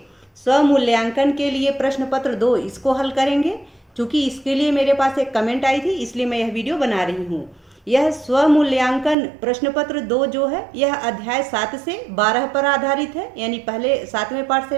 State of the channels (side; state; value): left; drops out; at 9.2 s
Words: स्वमूल्यांकन के लिए प्रश्न पत्र 2 इसको हल करेंगे। क्योंकि इसके लिए मेरे पास एक कमेंट आई थी, इसलिए मैं यह वीडियो बना रही हूँ। यह स्वमूल्यांकन प्रश्न पत्र 2 जो है यह अध्याय 7 से 12 पर आधारित है, यानी पहले 7वें पाठ से